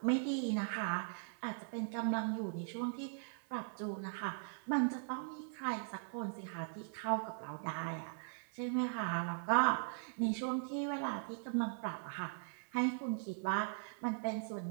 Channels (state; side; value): silent; left; digital silence